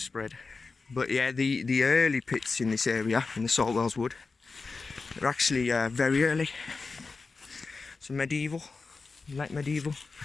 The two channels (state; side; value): quieter; right; 4.2 dB